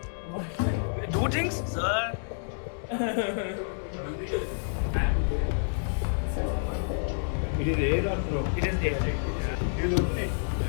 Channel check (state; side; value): silent; right; digital silence